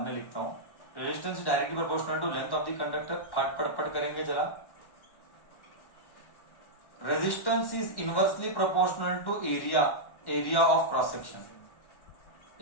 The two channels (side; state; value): right; late; 1.1 ms